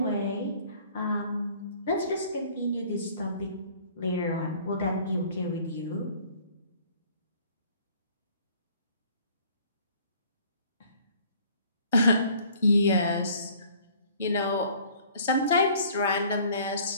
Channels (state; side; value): inverted; both; correlation -0.55